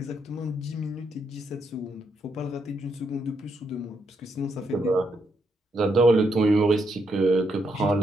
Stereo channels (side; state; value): both; normal; correlation 0.78